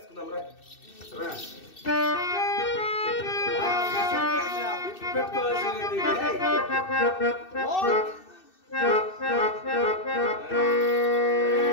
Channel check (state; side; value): late; right; 2.6 ms